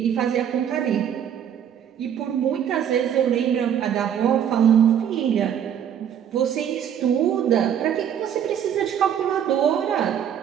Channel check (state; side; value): quieter; left; 9.1 dB